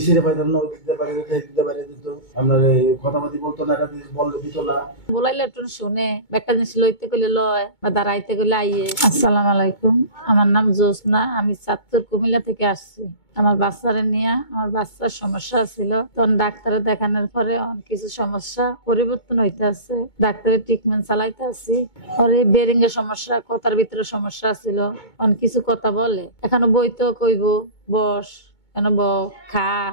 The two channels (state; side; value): late; right; 2.2 ms